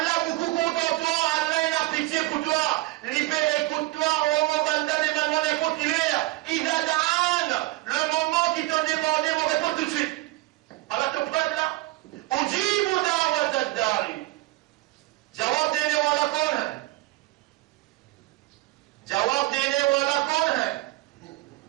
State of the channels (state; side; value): quieter; left; 19.4 dB